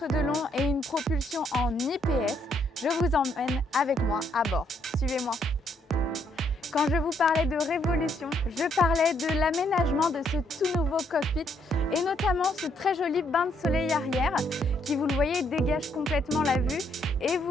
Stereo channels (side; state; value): both; normal; correlation 0.72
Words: de long et une propulsion en IPS. Je vous emmène avec moi à bord. Suivez-moi. Quand je vous parlais de révolution, je parlais de l'aménagement de ce tout nouveau cockpit et notamment ce très joli bain de soleil arrière qui, vous le voyez, dégage complètement la vue et